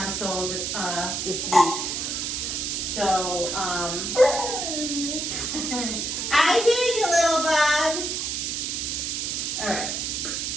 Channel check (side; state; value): right; noise; hiss, 2 dB below the sound